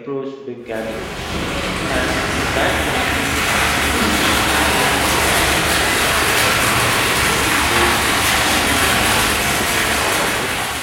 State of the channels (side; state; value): both; identical; correlation 1.00